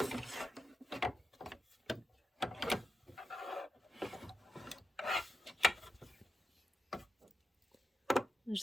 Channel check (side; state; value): both; normal; correlation 0.87